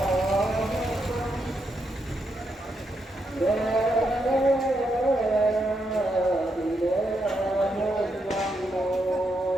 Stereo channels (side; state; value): both; normal; correlation 0.81